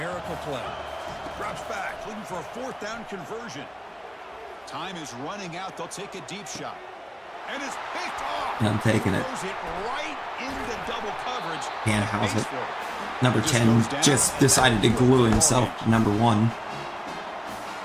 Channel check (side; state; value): both; identical; correlation 1.00